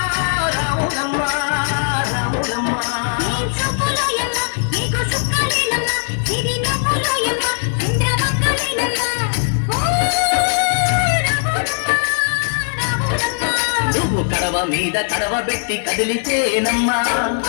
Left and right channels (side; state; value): right; silent; digital silence